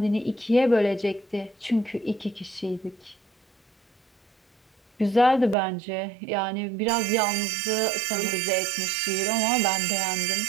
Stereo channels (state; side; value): drops out; left; at 5.6 s